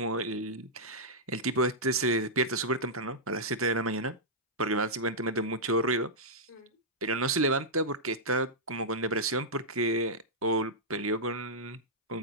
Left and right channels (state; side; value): normal; both; correlation -0.10